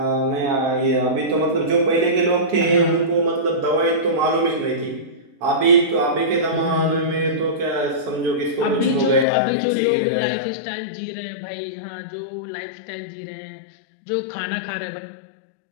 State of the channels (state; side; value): drops out; right; at 9.2 s